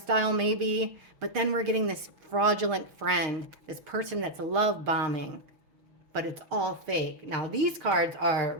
maybe. But then we're getting this fraudulent friend, this person that's love bombing, but it's all fake. Now these cards are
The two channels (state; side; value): late; left; 6.5 ms